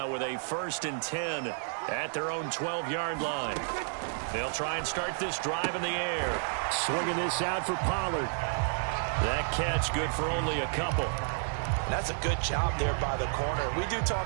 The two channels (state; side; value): silent; left; digital silence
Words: with a 1st and 10 at their own 12-yard line. They'll try and start this drive in the air. Swinging this out for Pollard. That catch good for only a couple. And that's a good job there by the corner. We do